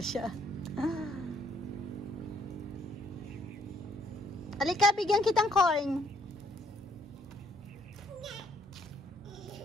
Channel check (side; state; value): both; normal; correlation 0.67